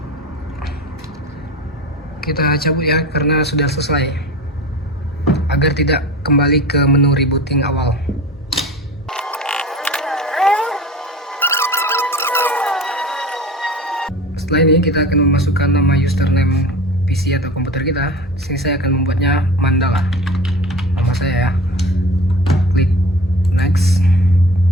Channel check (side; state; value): both; normal; correlation 0.36